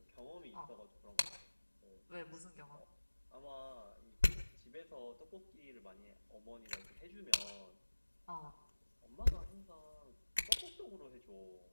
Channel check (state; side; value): inverted; both; correlation -1.00